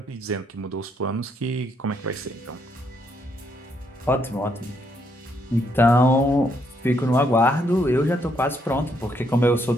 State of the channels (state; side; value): normal; both; correlation 0.74